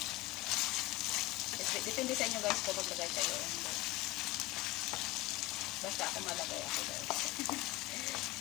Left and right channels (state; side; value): quieter; right; 20.3 dB